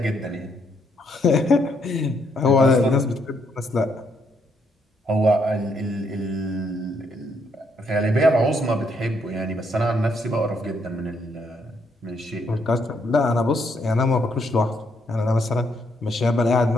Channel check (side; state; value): both; normal; correlation 0.73